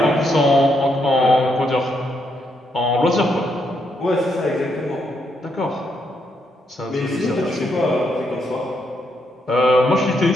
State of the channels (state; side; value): normal; both; correlation 0.77